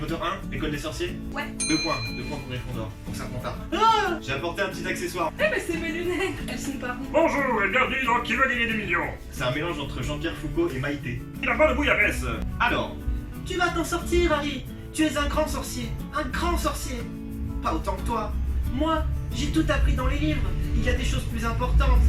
1, l'école des sorciers. Ouais. 2 points. 2 points pour Gryffondor. Donc ça compte pas. J'ai apporté un petit accessoire. Eh ben c'est mes lunettes. Elles sont pas rondes. Bonjour et bienvenue dans Qui veut gagner des millions. C'est un mélange entre Jean-Pierre Foucault et Maïté. Il a pas de bouillabaisse. Alors, Tu vas t'en sortir, Harry. Tu es un grand sorcier. Un grand sorcier. pas autant que toi. Moi, j'ai tout appris dans les livres. Il y a des choses plus importantes.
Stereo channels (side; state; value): both; identical; correlation 1.00